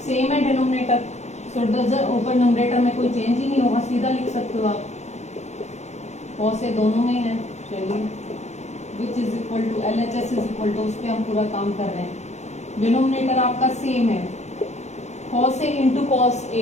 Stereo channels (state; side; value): late; right; 0.33 ms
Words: सेम है डिनोमिनेटर, सो डजर ऊपर नंबरेटर में कोई चेंज ही नहीं होगा, सीधा लिख सकते हो आप। कॉस ए दोनों में है, चलिए which is equal to LHS is equal to, उस पर हम पूरा काम कर रहे हैं। डिनोमिनेटर आपका सेम है, cos A into cos